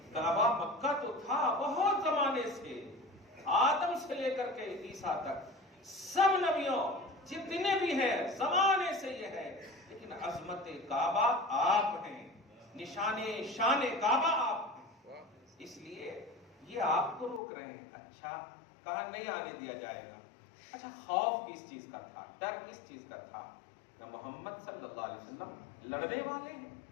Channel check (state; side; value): drops out; right; at 17.4 s